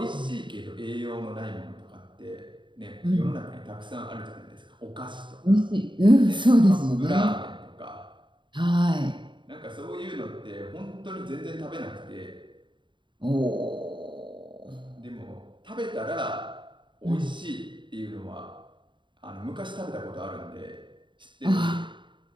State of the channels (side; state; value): left; late; 0.23 ms